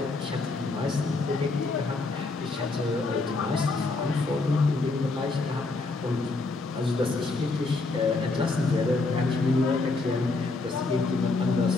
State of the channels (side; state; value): right; quieter; 3.5 dB